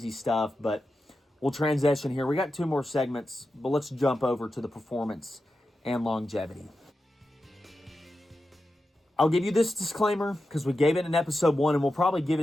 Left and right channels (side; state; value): both; normal; correlation 0.91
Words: stuff, but we'll transition here. We got 2 more segments, but let's jump over to the performance and longevity. I'll give you this disclaimer because we gave it in episode 1, and we'll probably give it